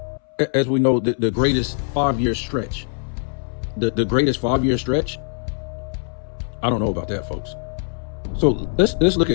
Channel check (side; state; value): right; silent; 64 dB below the other